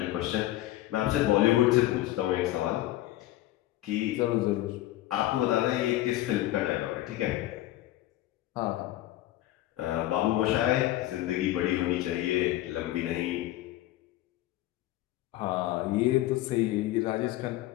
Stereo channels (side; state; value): right; quieter; 15.4 dB